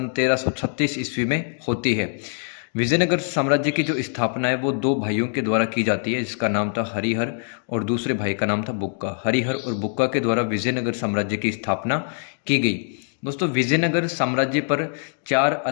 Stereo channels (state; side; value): silent; right; digital silence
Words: 1336 ईस्वी में होती है। विजयनगर साम्राज्य की जो स्थापना है वो दो भाइयों के द्वारा की जाती है, जिसका नाम था हरिहर और दूसरे भाई का नाम था बुक्का। हरिहर और बुक्का के द्वारा विजयनगर साम्राज्य की स्थापना की गई। दोस्तों, विजयनगर साम्राज्य पर चार